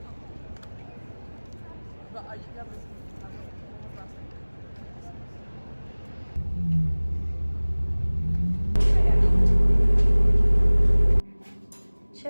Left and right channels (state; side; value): inverted; both; correlation -1.00